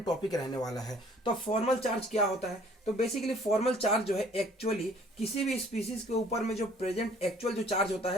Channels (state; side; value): normal; both; correlation 0.56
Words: टॉपिक रहने वाला है। तो फॉर्मल चार्ज क्या होता है? तो बेसिकली फॉर्मल चार्ज जो है एक्चुअली किसी भी स्पीसीज के ऊपर में जो प्रेजेंट एक्चुअल जो चार्ज होता